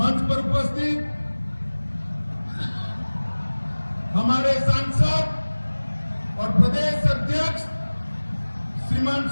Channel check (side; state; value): both; inverted; correlation -1.00